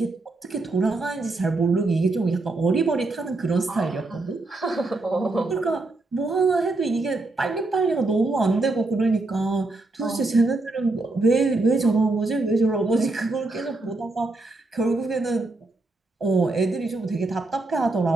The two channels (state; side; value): quieter; left; 3.1 dB